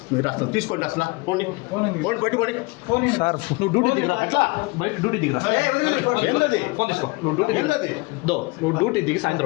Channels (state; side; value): quieter; right; 25.5 dB